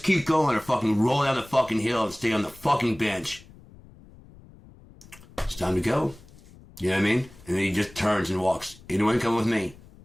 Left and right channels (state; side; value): noise; left; rumble, 22 dB below the sound